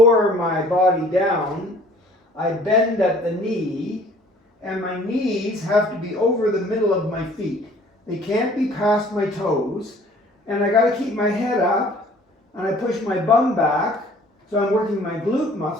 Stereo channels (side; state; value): both; normal; correlation 0.53